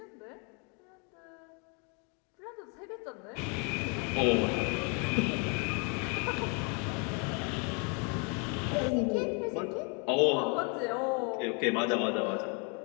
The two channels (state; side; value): quieter; right; 36.1 dB